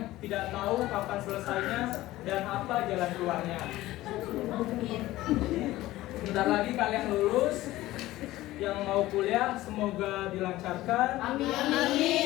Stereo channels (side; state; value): right; quieter; 16.6 dB